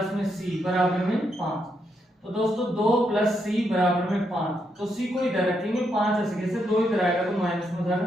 में c बराबर में 5। तो दोस्तों 2 प्लस c बराबर में 5, तो c को इधर रखेंगे, 5 ऐसे कैसे 2 इधर आएगा तो माइनस में जाएगा,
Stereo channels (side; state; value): both; normal; correlation 0.79